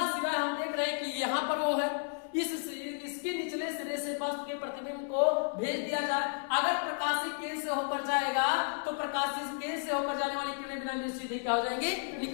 सिरा हम देख रहे हैं कि यहाँ पर वो है, इसके निचले सिरे से वस्तु के प्रतिबिंब को भेज दिया जाए। अगर प्रकाशिक केंद्र से होकर जाएगा तो प्रकाशिक केंद्र से होकर जाने वाली किरणें बिना सीधे क्या हो जाएंगी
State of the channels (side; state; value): right; silent; digital silence